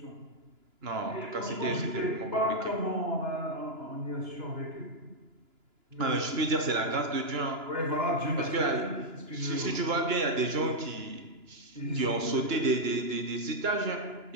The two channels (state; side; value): late; left; 2.9 ms